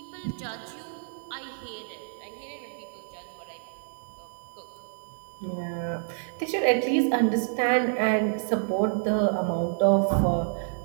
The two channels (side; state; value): left; silent; digital silence